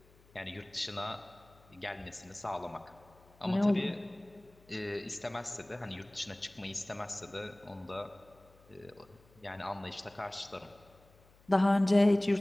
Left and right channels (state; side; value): noise; left; hum, 28 dB below the sound